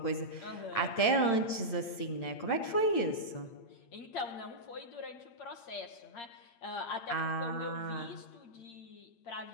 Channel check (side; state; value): right; late; 8.8 ms